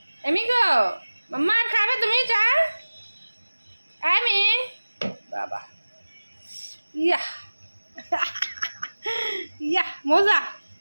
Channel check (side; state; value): both; inverted; correlation -1.00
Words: এমি গো মাম্মা আর খাবে তুমি চা এমি বাবা ইয়া ইয়া মজা